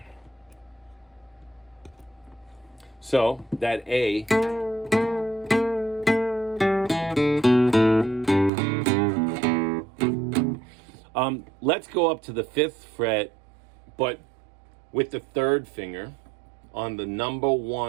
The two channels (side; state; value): left; drops out; at 8.5 s